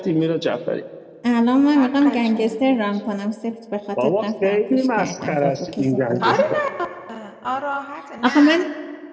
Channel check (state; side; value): identical; both; correlation 1.00